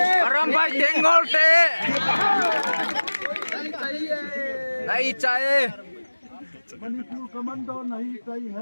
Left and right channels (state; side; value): inverted; both; correlation -1.00